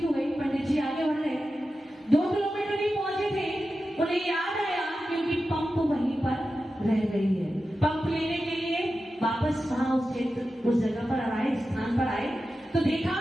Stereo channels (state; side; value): normal; both; correlation 0.92